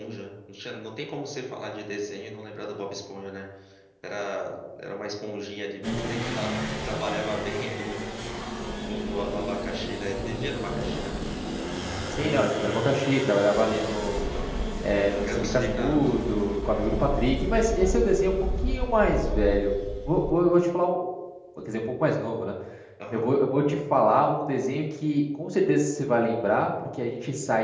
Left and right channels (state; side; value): identical; both; correlation 1.00